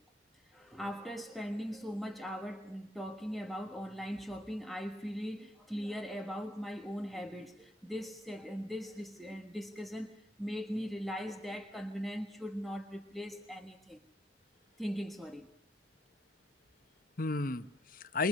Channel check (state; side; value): normal; both; correlation 0.75